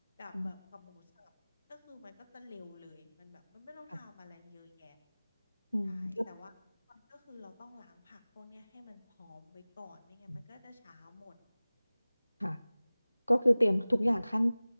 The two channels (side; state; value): both; inverted; correlation -0.99